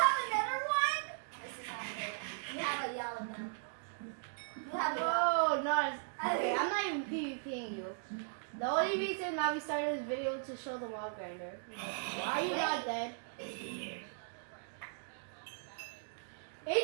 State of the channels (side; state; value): left; silent; digital silence